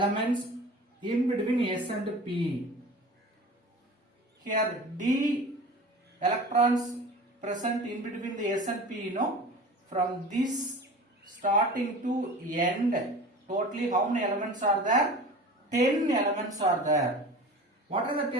in between S and P. Here D electrons present in between the S and P, from this starting to end, totally how many elements are there? 10 elements are there. What are the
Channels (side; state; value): both; normal; correlation 0.37